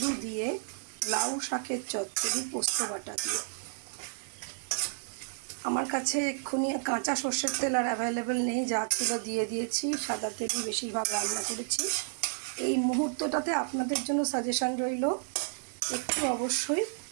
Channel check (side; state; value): left; silent; digital silence